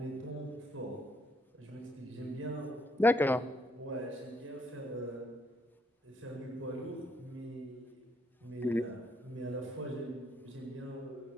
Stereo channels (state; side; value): normal; both; correlation 0.72